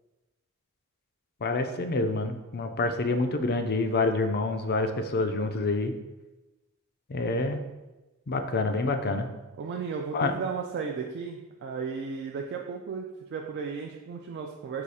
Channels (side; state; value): both; normal; correlation 0.20